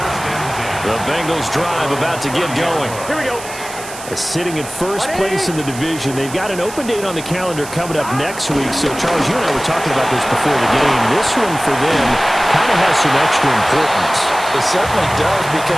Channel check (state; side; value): noise; right; hiss, 13 dB below the sound